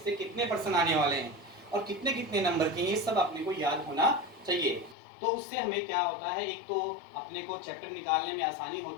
से कितने प्रश्न आने वाले हैं, और कितने कितने नंबर के, ये सब अपने को याद होना चाहिए। तो उससे हमें क्या होता है? एक तो अपने को चैप्टर निकालने में आसानी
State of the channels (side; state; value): right; drops out; at 5.0 s